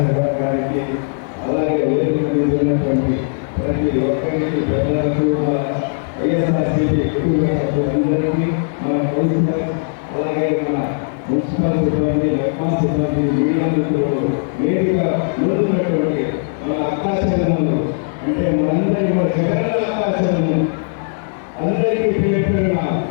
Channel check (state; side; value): silent; right; digital silence